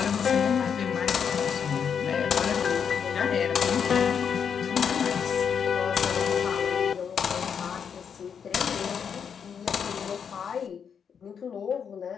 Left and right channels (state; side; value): quieter; right; 7.2 dB